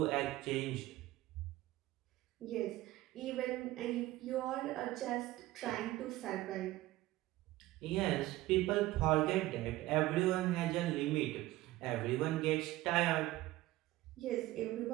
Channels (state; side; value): quieter; left; 17.1 dB